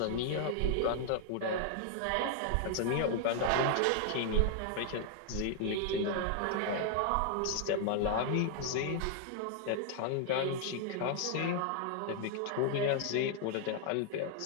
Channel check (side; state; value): both; different; correlation 0.00